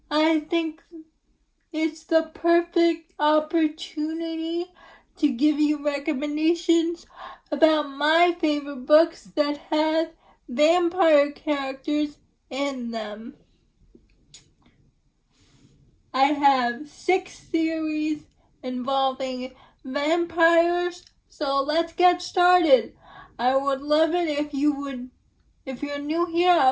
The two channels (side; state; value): both; identical; correlation 1.00